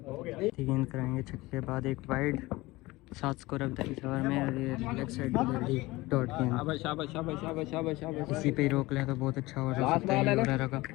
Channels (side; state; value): right; quieter; 20.4 dB